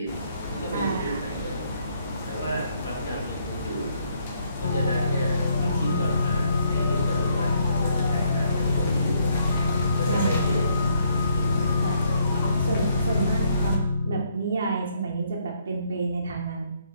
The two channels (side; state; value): both; inverted; correlation -0.71